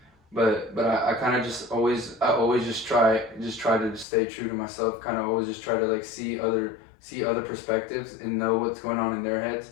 but I kind of just always just try to stay true to myself. Kind of always just try to like see other perspectives and know what's going on in their heads,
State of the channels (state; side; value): drops out; right; at 4.0 s